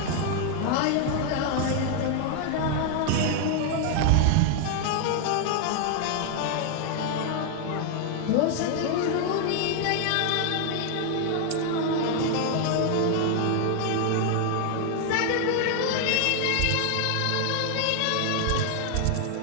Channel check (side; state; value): both; different; correlation 0.00